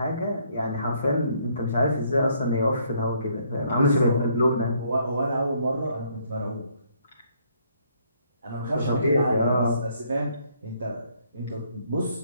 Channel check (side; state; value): both; inverted; correlation -0.67